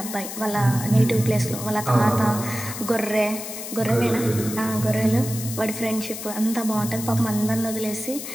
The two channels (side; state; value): left; noise; hiss, 8 dB below the sound